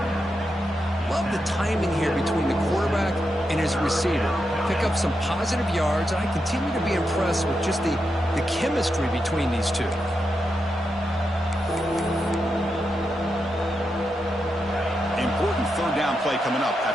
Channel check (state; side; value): normal; both; correlation 0.86